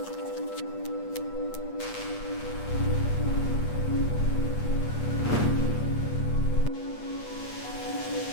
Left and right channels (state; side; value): late; right; 8.4 ms